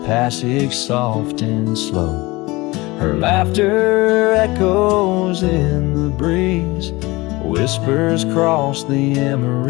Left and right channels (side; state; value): right; quieter; 22.0 dB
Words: passage soft and slow. Her laughter echoes in the breeze, whispers cross the